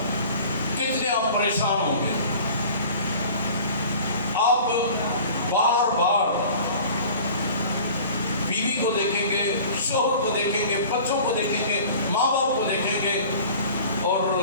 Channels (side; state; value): both; inverted; correlation -0.44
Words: کتنے آپ پریشان ہوں گے، آپ بار بار بیوی کو دیکھیں گے، شوہر کو دیکھیں گے، بچوں کو دیکھیں گے، ماں باپ کو دیکھیں گے، اور